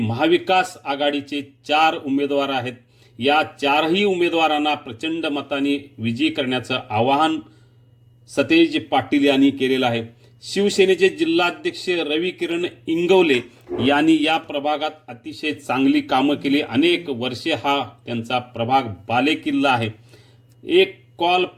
आघाडीचे 4 उमेदवार आहेत. या 4ही उमेदवारांना प्रचंड मताने विजयी करण्याचं आवाहन सतेज पाटील यांनी केलेलं आहे. शिवसेनेचे जिल्हाध्यक्ष रविकिरण इंगवले यांनी या प्रभागात अतिशय चांगली कामं केली. अनेक वर्षे हा त्यांचा प्रभाग बालेकिल्ला आहे. एक कॉल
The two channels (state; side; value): identical; both; correlation 1.00